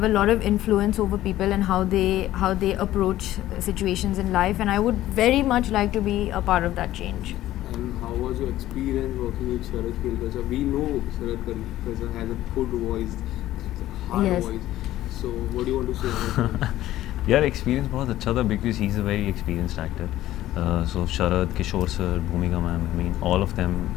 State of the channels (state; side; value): quieter; right; 14.4 dB